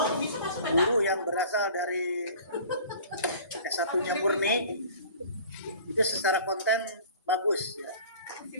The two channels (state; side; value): inverted; both; correlation -0.44